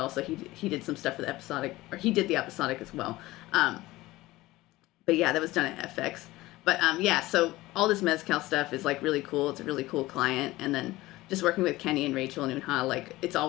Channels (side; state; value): right; quieter; 18.5 dB